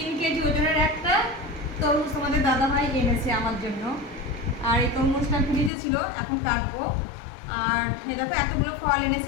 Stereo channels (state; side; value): drops out; right; at 5.7 s